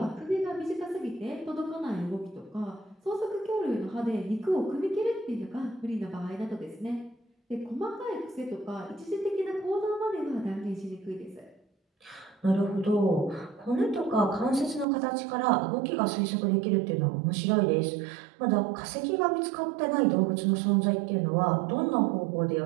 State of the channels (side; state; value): left; drops out; at 14.9 s